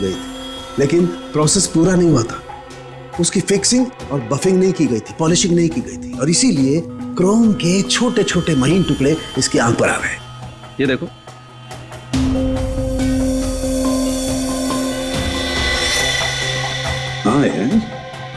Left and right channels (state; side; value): identical; both; correlation 1.00